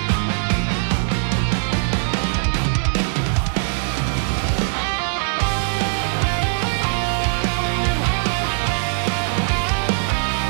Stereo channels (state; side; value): silent; left; digital silence